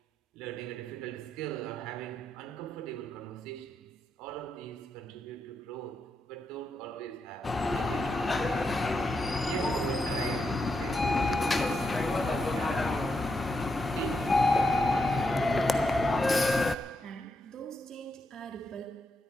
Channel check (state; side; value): normal; both; correlation 0.83